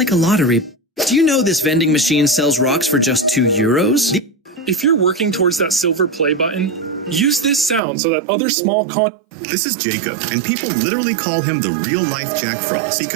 a lottery. Do you know this vending machine sells rocks for just €2? If you're working towards that silver play button, use this sound so that other small This is Jacob, and people literally call him the real-life Jack Frost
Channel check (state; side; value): drops out; left; at 7.8 s